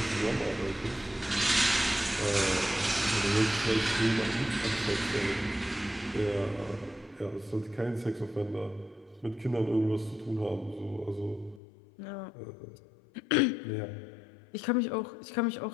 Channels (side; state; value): right; drops out; at 11.6 s